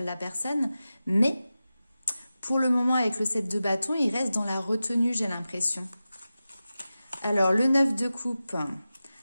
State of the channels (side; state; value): both; inverted; correlation -0.94